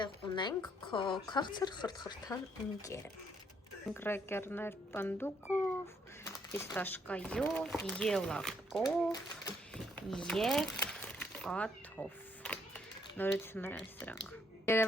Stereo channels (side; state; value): both; normal; correlation 0.71